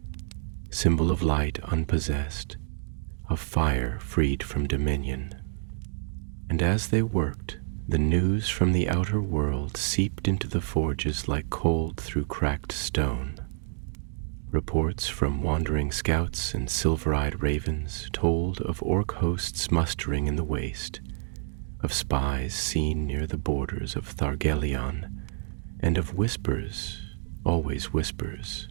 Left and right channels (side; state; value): left; silent; digital silence